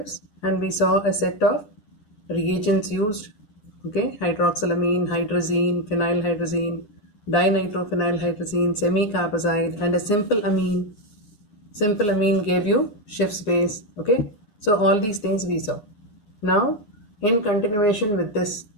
and we saw a set of reagents used, okay, hydroxylamine, hydrazine, phenylhydrazine, dinitrophenylhydrazine, semi-carbazide, and a simple amine. Simple amine gave you Schiff's base, okay. So all these things we saw. Now, in continuation with this,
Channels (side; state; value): right; late; 9.8 ms